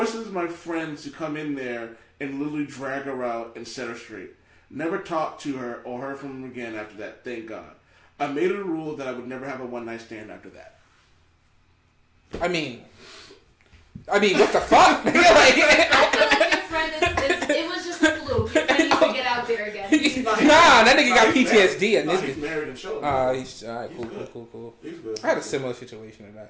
my friends to come in there and literally drag her out and set her straight. Never talked to her or heard from her again after that, thank God. I made it a rule that I would never have a one-night stand after that. I mean, what the fuck? I feel like your friend it was just a fluke. Your friend needs to get out there again. That nigga got PTSD. And he's married and children. He's alright. Cool. He's good. I had a similar situation to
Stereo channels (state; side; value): identical; both; correlation 1.00